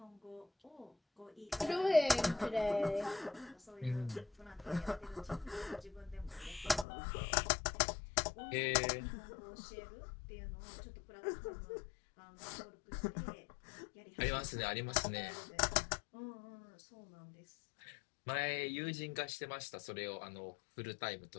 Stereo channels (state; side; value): drops out; right; at 6.9 s